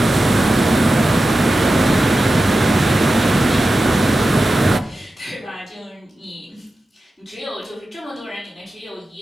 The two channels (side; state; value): both; normal; correlation 0.92